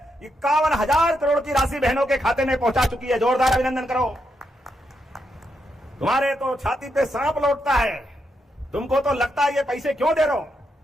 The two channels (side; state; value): both; normal; correlation 0.82